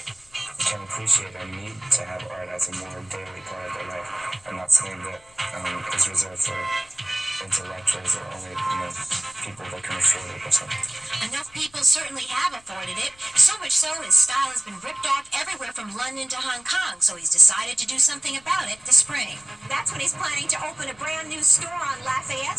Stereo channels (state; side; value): noise; left; rumble, 29 dB below the sound